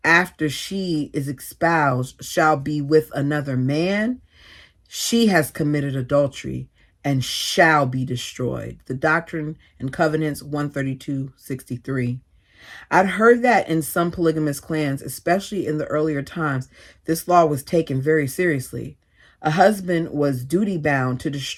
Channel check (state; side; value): identical; both; correlation 1.00